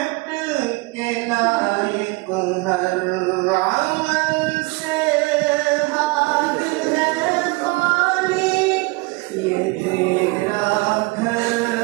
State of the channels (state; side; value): quieter; left; 25.6 dB